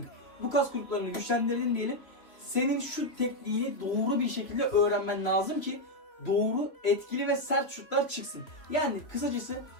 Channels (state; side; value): late; right; 3.2 ms